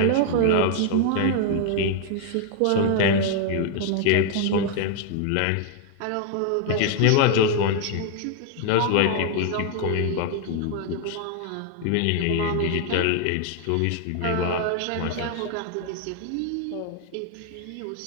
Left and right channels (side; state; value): both; different; correlation 0.00